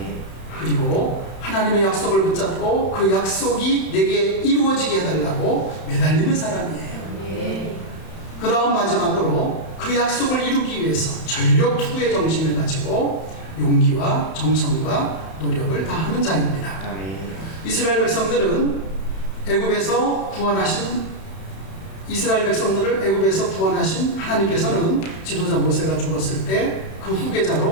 그리고 하나님의 약속을 붙잡고 그 약속이 내게 이루어지게 해달라고 매달리는 사람이에요. 그 다음 마지막으로 그 약속을 이루기 위해서 전력 투구의 정신을 가지고 용기와 정성과 노력을 다하는 자입니다. 아멘. 이스라엘 백성들을 애굽에서 구원하신 하나님께서는 지도자 모세가 죽었을 때 그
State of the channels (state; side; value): late; right; 31 ms